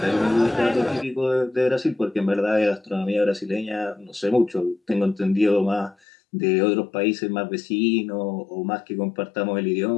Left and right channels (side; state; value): right; drops out; at 6.0 s